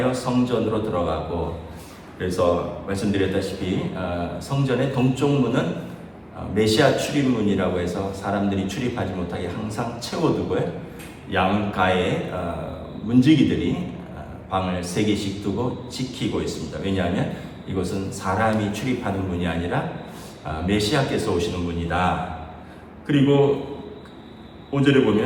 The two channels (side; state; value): both; identical; correlation 1.00